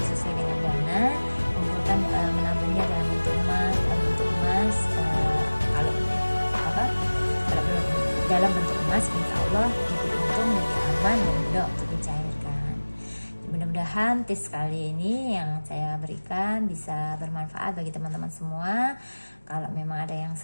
sesuai dengan dana, kumpulkan menabungnya dalam bentuk emas, kalau belum dalam bentuk emas, insya Allah lebih untung, lebih aman dan mudah untuk dicairkan. Mudah-mudahan tips kali ini yang saya berikan bisa bermanfaat bagi teman-teman semua. Kalau memang ada yang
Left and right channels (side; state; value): both; inverted; correlation -1.00